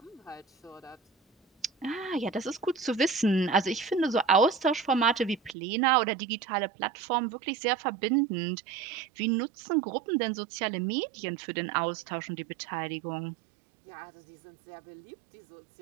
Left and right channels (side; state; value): left; drops out; at 5.6 s